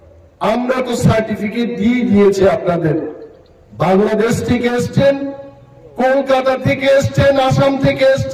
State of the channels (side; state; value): both; identical; correlation 1.00